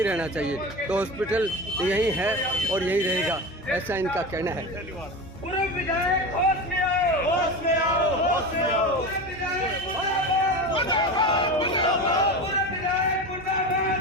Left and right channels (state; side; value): normal; both; correlation 0.26